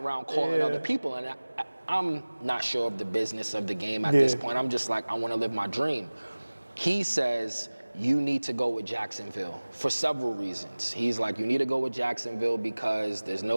calling other people. And I'm not sure of the business of the game at this point. I'm just like, I want to live my dream. He says, you need to go with Jacksonville for several reasons. He's like, you need to go with Jacksonville because there's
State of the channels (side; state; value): both; inverted; correlation -1.00